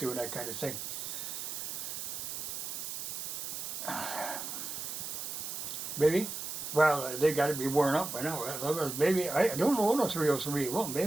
that kind of thing. Maybe? Well, they got to be worn up by now. Maybe, I don't own a 303. Well,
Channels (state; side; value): noise; right; hiss, 5 dB below the sound